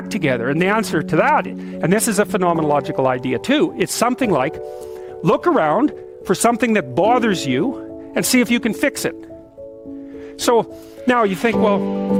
together? And the answer to that, and this is a phenomenological idea too, it's something like, look around for something that bothers you and see if you can fix it. So now you think, well,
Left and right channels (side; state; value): both; identical; correlation 1.00